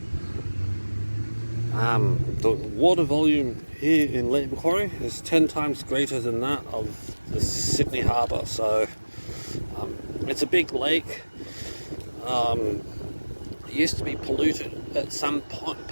the water volume here in Lake Macquarie is 10 times greater than that of the Sydney Harbour. So it's a big lake. It used to be polluted at some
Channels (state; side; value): inverted; both; correlation -1.00